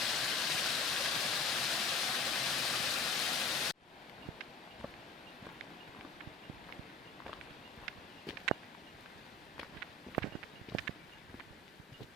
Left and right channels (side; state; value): right; quieter; 3.9 dB